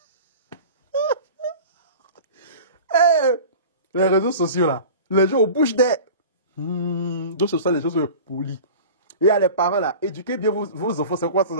Les réseaux sociaux là, les gens au bouche des... donc ce sont les gens polis. Et il y a les parents là, éduquez bien vos enfants, c'est quoi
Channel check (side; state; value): both; inverted; correlation -0.38